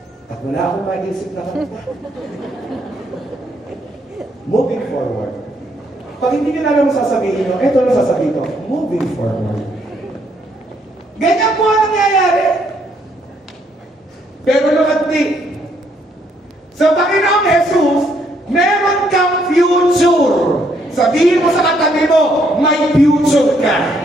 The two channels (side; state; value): both; normal; correlation 0.71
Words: At wala akong maisip na kanta. Moving forward. Pag hindi niyo na alam sasabihin nyo, eto na sasabihin ko, moving forward. Ganyan po ang nangyayari. Pero look at me. Sa Panginoong Jesus, meron kang future. Sabihin mo sa katabi mo, may future